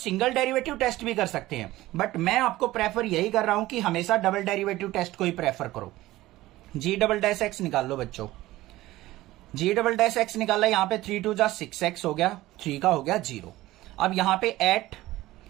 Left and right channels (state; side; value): quieter; left; 17.0 dB